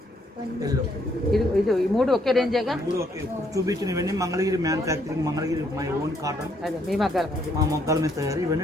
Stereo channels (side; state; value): both; normal; correlation 0.70